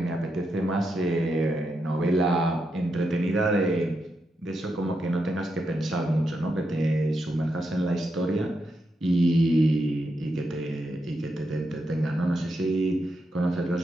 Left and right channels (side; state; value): both; normal; correlation 0.84